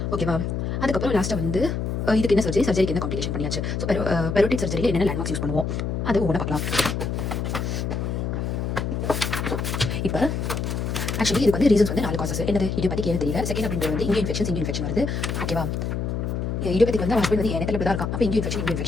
ஓகேவா? அதுக்கப்புறம் லாஸ்ட்டாக வந்து இதுக்கு என்ன சர்ஜரிக்கு என்ன காம்ப்ளிகேஷன் பண்ணியாச்சு. ஸோ பெரோட்டிக் சர்ஜரியில் என்னென்ன லேண்ட்மார்க்ஸ் யூஸ் பண்ணுவோம் அது ஒவ்வொன்றா பார்க்கலாம். இப்போ ஆக்சுவலி இதுக்கு வந்து ரீசன்ஸ் வந்து 4 காசஸ். என்னது இடியோபேத்திக் ஏன்னு தெரியல. செகண்ட் அப்படின்றது வந்து இங்கே இன்ஃபெக்ஷன் வருது. ஓகேவா? இடியோபேத்திக் வந்து ஹஸ்பண்ட் வந்து எண்ணத்தில் தான் இருக்கான். அப்போ இங்கே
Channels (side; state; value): left; noise; hum, 2 dB below the sound